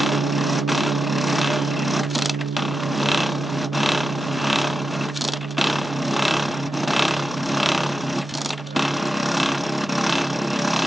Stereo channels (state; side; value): normal; both; correlation 0.89